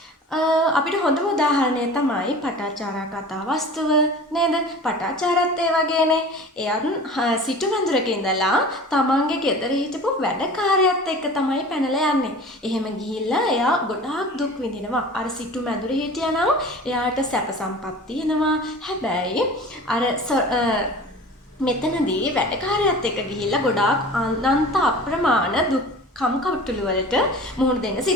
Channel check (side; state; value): both; normal; correlation 0.40